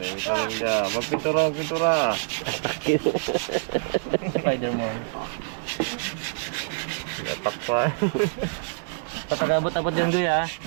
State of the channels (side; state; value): left; silent; digital silence